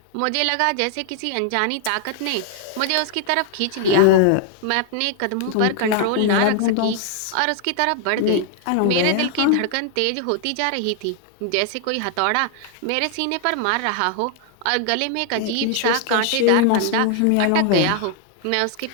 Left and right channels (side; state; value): both; different; correlation 0.00